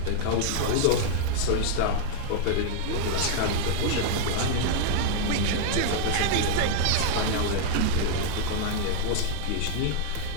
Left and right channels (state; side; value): different; both; correlation 0.00